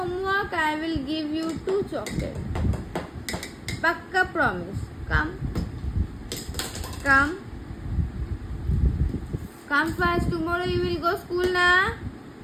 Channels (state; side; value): identical; both; correlation 1.00